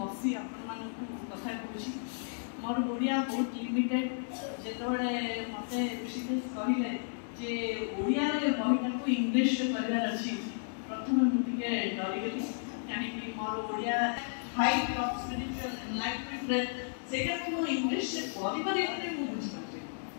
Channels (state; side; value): silent; right; digital silence